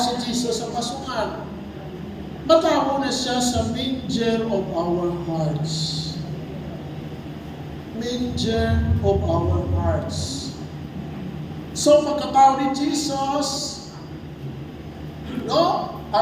Jesus sa pasungan. Matawa na siya sa manger of our hearts. Manger of our hearts. So, pagkatawa ni Jesus, no?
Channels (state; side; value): identical; both; correlation 1.00